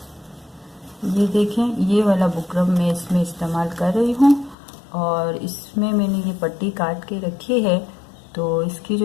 ये देखें, ये वाला बुकरम मैं इसमें इस्तेमाल कर रही हूँ और इसमें मैंने ये पट्टी काट के रखी है। तो इसकी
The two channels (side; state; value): right; drops out; at 4.5 s